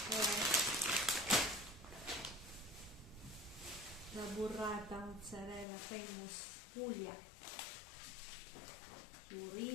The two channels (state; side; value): drops out; right; at 5.7 s